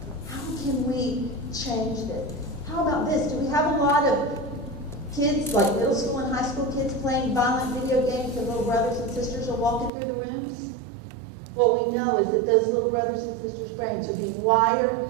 How can we change this? How about this? Do we have a lot of kids, like middle school and high school kids, playing violent video games and little brothers and sisters are walking through the rooms? What we know is that those little brothers and sisters' brains are being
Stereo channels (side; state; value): left; drops out; at 9.9 s